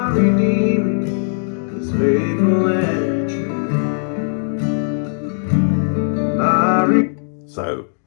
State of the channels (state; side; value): silent; right; digital silence